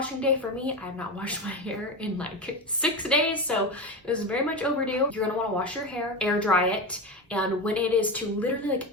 day for me. I have not washed my hair in like 6 days, so it is very much overdue. You're gonna wanna wash your hair, air dry it, and when it is to literally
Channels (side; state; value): both; normal; correlation 0.20